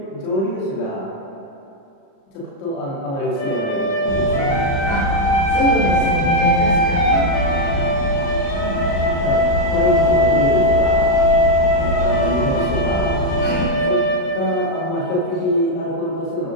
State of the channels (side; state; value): right; late; 36 ms